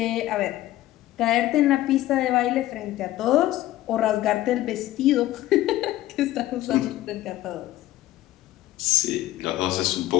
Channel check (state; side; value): quieter; right; 15.0 dB